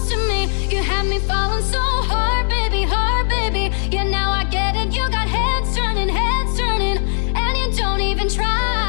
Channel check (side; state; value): right; silent; digital silence